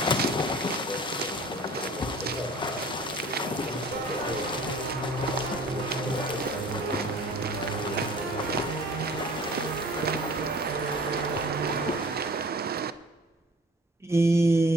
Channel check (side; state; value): both; normal; correlation 0.47